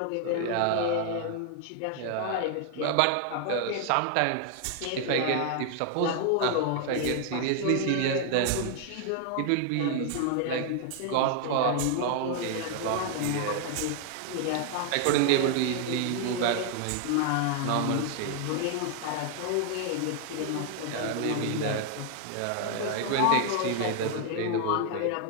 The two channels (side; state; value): both; different; correlation 0.00